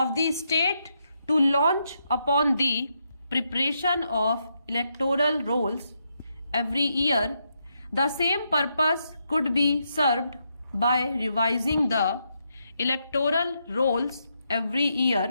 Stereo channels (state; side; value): inverted; both; correlation -0.81